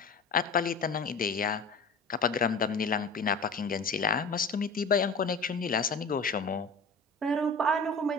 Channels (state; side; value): quieter; right; 3.6 dB